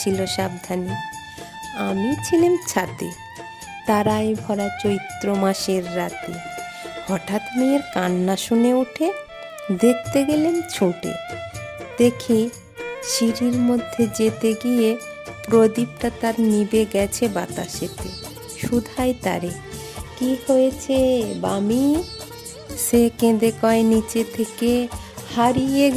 সাবধানে। আমি ছিলাম ছাতে, তারায় ভরা চৈত্র মাসের রাতে। হঠাৎ মেয়ের কান্না শুনে উঠে দেখতে গেলেন ছুটে। দেখি সিঁড়ির মধ্যে যেতে গিয়ে প্রদীপটা তার নিভে গেছে বাতাসেতে। শুধাই তারে, কি হয়েছে বামি? সে কেঁদে কয় নিচে থেকে, হারিয়ে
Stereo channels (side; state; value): both; identical; correlation 1.00